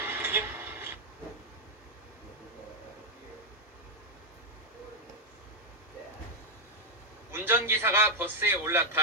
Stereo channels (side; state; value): both; normal; correlation 0.00